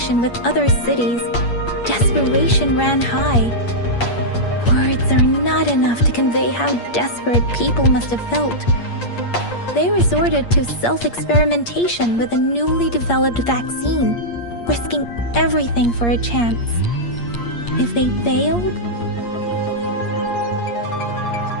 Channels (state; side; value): late; right; 8.5 ms